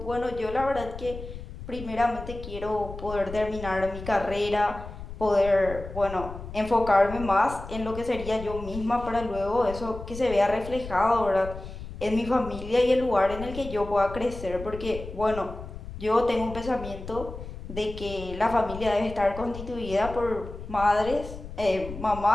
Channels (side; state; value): left; noise; rumble, 11 dB below the sound